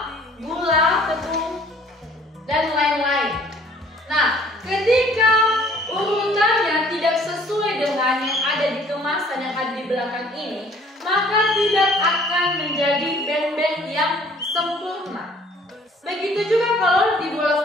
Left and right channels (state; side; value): normal; both; correlation 0.56